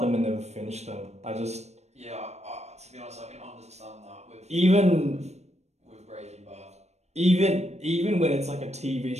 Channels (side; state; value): left; late; 0.32 ms